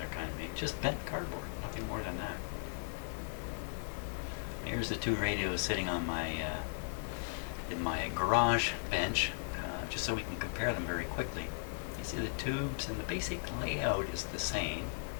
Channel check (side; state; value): right; silent; digital silence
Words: kind of made. Just bent cardboard, nothing more than that. Here's the 2 radios sitting on my in my garage bench, just so we can compare them very quickly. You see the tubes and the basic layout is the same.